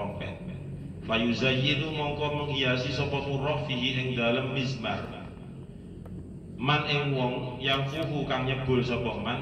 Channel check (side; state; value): both; identical; correlation 1.00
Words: Fayuzayyinu mongko menghiasi sapa murrah fihi ing dalem mizmar. Man ing wong yang fuhu kang nyebul sapa